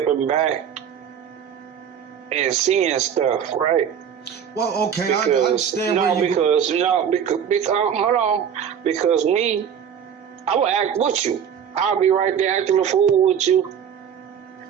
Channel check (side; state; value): left; quieter; 8.1 dB